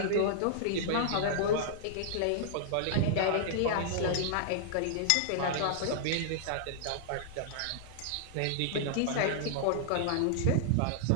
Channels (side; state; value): both; different; correlation -0.01